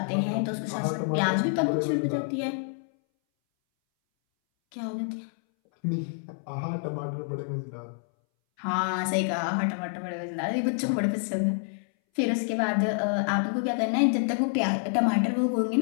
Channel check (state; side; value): silent; right; 60 dB below the other